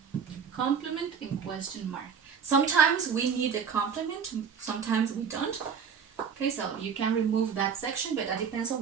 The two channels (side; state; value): left; quieter; 6.7 dB